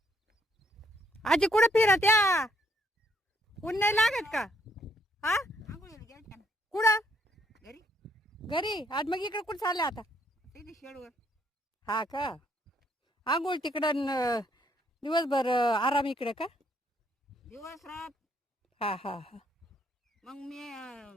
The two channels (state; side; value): normal; both; correlation 0.70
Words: आजी कुठे फिरत या? ऊन नाही लागत का? हा कुठं? घरी घरी. आज मग इकडे कुठं चालले आता? ते शेडवर हा का? आंघोळ तिकडं दिवसभर आराम इकडे का? दिवस रात हा हा हा. मग